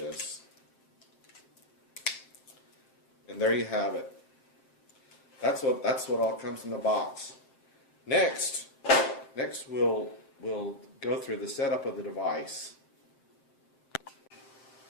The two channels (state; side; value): late; right; 7.6 ms